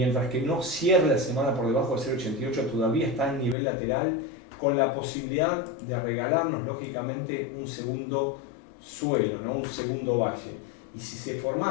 que no cierre la semana por debajo de 0,88, todavía está en nivel lateral, con la posibilidad de regalarnos lógicamente un segundo suelo, ¿no?, un segundo valle. Y si se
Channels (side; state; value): right; drops out; at 3.6 s